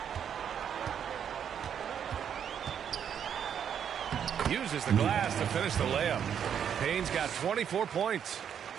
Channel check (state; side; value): quieter; left; 8.5 dB